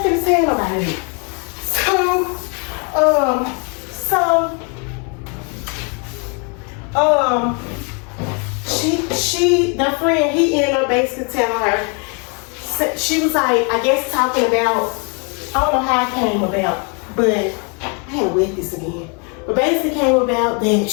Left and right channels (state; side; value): quieter; right; 35.7 dB